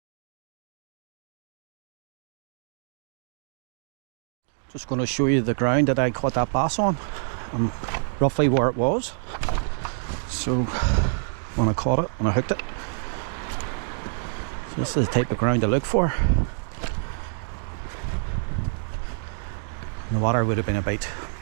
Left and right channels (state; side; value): silent; left; digital silence